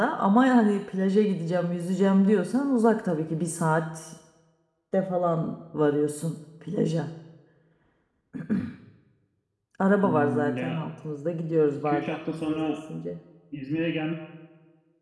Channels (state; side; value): identical; both; correlation 1.00